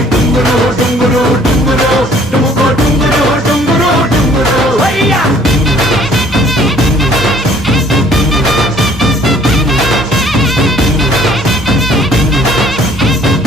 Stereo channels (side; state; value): both; normal; correlation 0.58